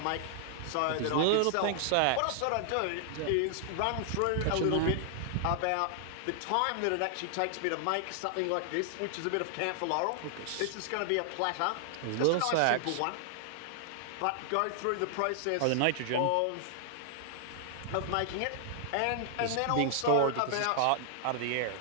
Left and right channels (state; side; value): different; both; correlation -0.01